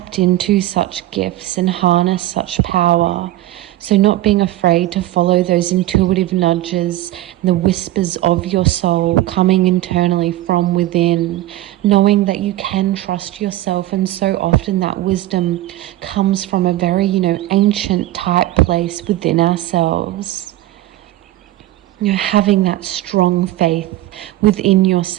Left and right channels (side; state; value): left; quieter; 15.4 dB